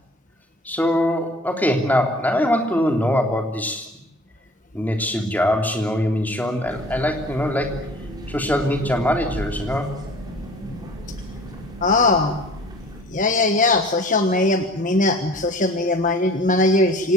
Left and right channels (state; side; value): normal; both; correlation 0.47